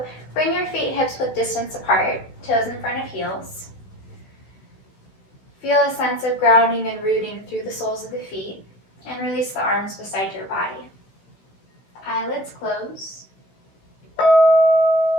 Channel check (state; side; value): late; right; 15 ms